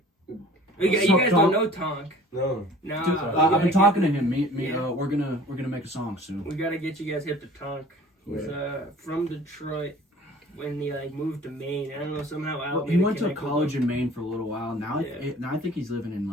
You So guys Tonk- don't know Tonk. No. No, Dude, I've been talking to him. Yeah. We're gonna make a song soon. We gotta get you guys hip to Tonk. He's from Detroit when he like moved to Maine. I don't know, somehow out. He went to college in Maine for a little while. Now, Yeah. now I think he's living in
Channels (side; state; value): both; normal; correlation 0.48